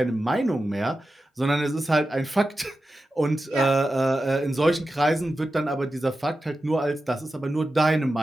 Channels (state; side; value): normal; both; correlation 0.92